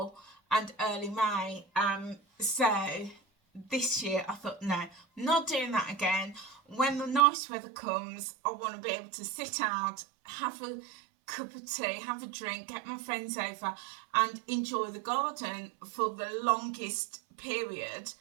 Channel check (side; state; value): left; drops out; at 7.2 s